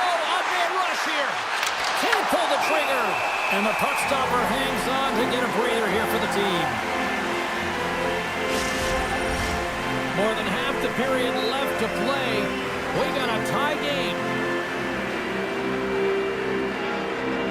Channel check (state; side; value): identical; both; correlation 1.00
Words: rush here. Can't pull the trigger. And the puck stopper hangs on to get a breather here for the team. More than half the period left to play. We got a tie game.